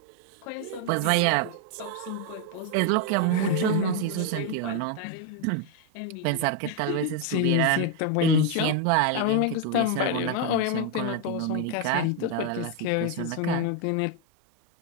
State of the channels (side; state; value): both; different; correlation 0.01